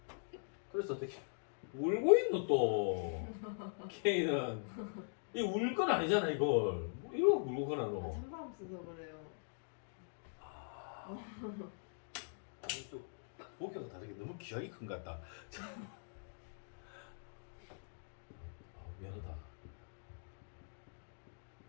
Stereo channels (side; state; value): right; silent; digital silence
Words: 그래서 어떻게 울고 있노 또 K는 이 울 건 아니잖아 이걸 뭐 이거 울고 그나 너. 찬바람 써서 그래요. 아니 또 목표가 다르게 너무 기억이 큰 것 같다. 미안하다.